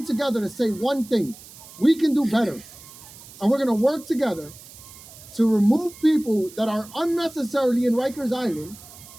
together to say one thing: we can do better. And we're gonna work together to remove people that are unnecessarily in Rikers Island,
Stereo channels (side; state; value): right; noise; hiss, 19 dB below the sound